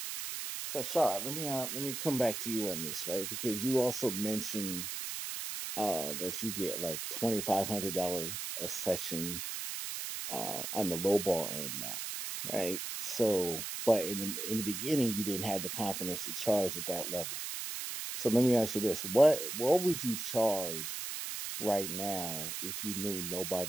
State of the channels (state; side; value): noise; right; hiss, 5 dB below the sound